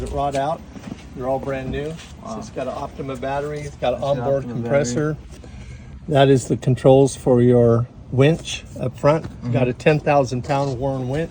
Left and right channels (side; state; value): both; identical; correlation 1.00